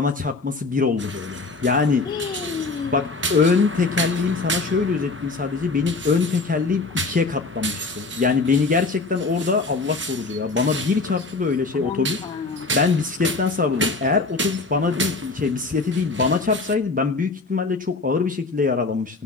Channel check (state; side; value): quieter; right; 3.8 dB